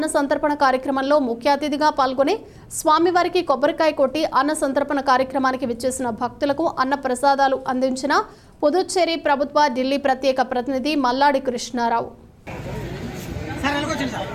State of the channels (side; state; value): both; identical; correlation 1.00